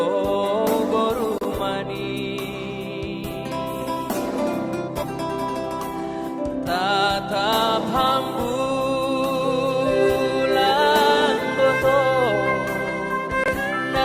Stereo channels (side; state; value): both; identical; correlation 1.00